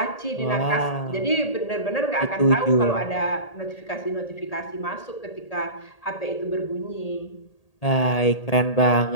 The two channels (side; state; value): right; late; 1.8 ms